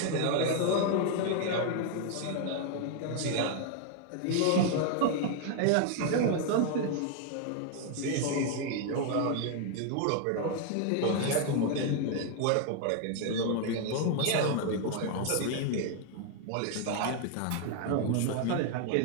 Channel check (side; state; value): both; different; correlation 0.00